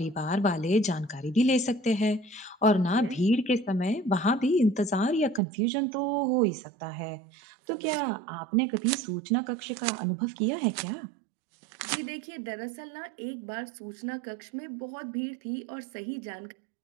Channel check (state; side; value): drops out; left; at 5.4 s